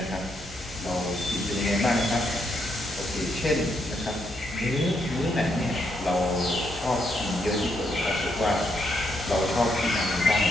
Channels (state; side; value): normal; both; correlation 0.77